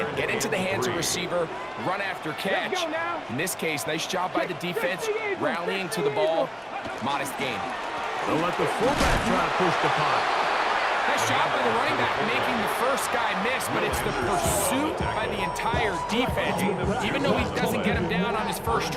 get into the hands of receiver, run after catch. In this case, nice job by the defense, rallying to the ball, modest gain. They'll let the fullback try to push the pot. Nice job by the running back making the first guy miss, but it's the pursuit by the entire defense. Even though he doesn't get him down on his first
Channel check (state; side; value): identical; both; correlation 1.00